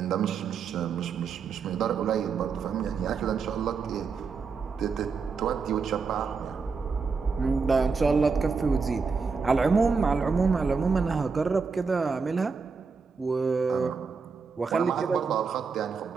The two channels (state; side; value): quieter; left; 5.1 dB